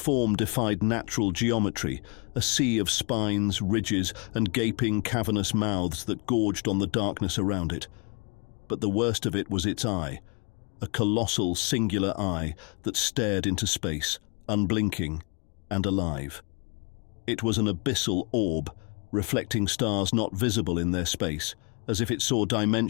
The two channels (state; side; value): quieter; right; 34.1 dB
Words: defied natural geometry, a sea of spines, ridges, and gaping cavernous mouths that gorged on the darkness around it. But the worst of it was its eye, a colossal singular eye that stared into space, unblinking and alive. It was an abyssal orb, reflecting stars not visible in their space, as if it saw